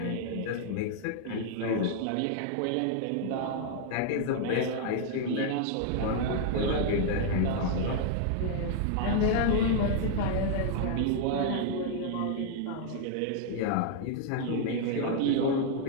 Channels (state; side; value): different; both; correlation 0.00